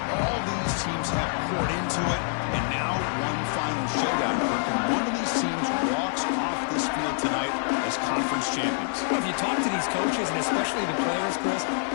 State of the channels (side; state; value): right; silent; digital silence